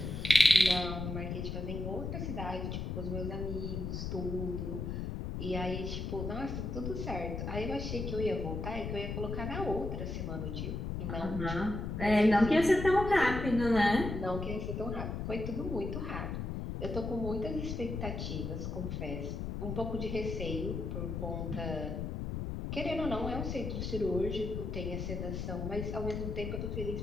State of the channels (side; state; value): left; noise; rumble, 4 dB below the sound